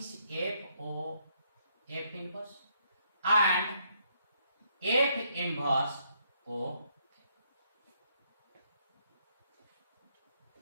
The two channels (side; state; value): both; inverted; correlation -0.72